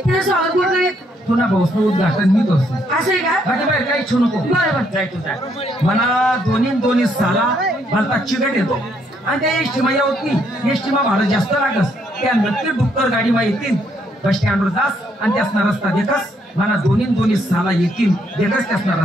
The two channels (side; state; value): both; normal; correlation 0.72